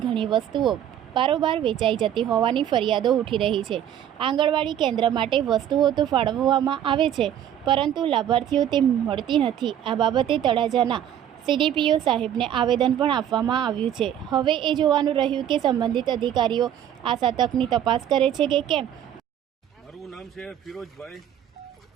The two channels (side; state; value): left; quieter; 10.4 dB